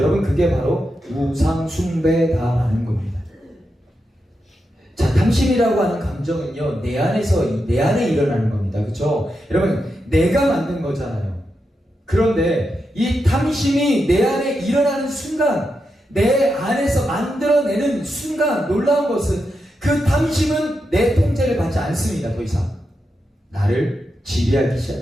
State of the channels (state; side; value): normal; both; correlation 0.86